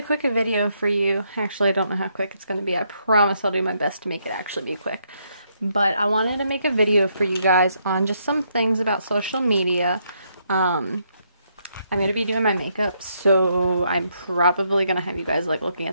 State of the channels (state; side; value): inverted; both; correlation -0.75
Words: quick video for you. Actually, I don't know how quick it's going to be. I promise I'll do my best to make it actually be quick. But I wanted to make a video for you guys on just some things about social media. I'm going to be doing my makeup, so I'm probably going to have you guys like looking